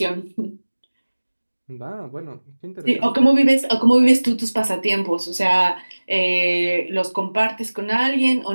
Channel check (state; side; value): inverted; both; correlation -1.00